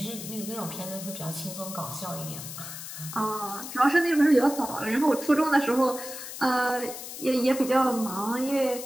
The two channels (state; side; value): noise; left; hiss, 10 dB below the sound